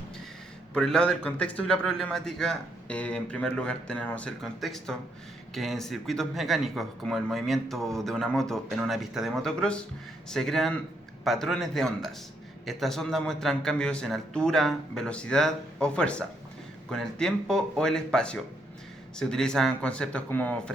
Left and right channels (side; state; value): both; normal; correlation 0.75